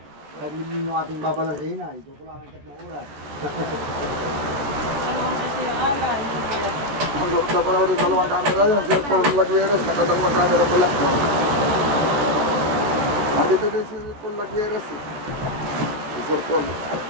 Kami nyo ating babalansin na. Ito ko lang ang 3 oras. Ang ganda pa rin dalawang camera yan. Sir Paul Lagueras, nakadalawang camera pala. Dito din si Paul Lagueras eh. Si Sir Paul.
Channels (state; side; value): late; left; 14 ms